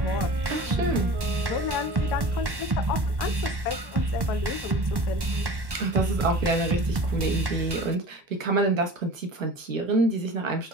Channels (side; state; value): left; late; 1.1 ms